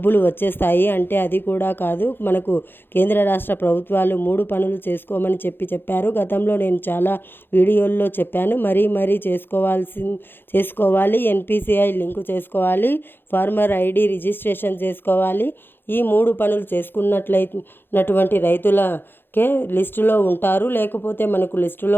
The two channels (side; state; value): right; late; 0.10 ms